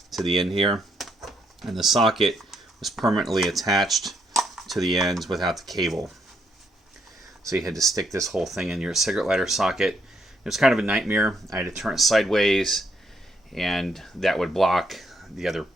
to the end here, and the socket was permanently attached to the ends without the cable. So you had to stick this whole thing in your cigarette lighter socket. It was kind of a nightmare. I had to turn it sideways, and that would block the other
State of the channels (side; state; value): both; normal; correlation 0.75